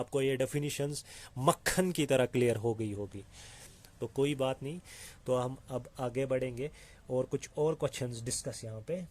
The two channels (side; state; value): both; identical; correlation 1.00